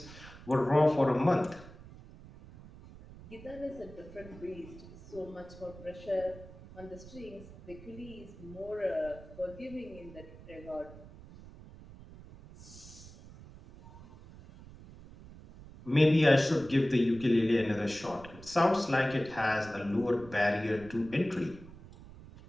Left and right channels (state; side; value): noise; right; rumble, 18 dB below the sound